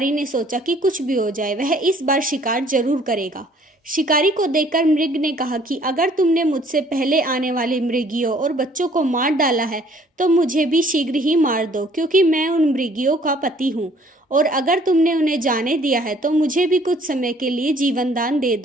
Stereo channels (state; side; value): normal; both; correlation 0.59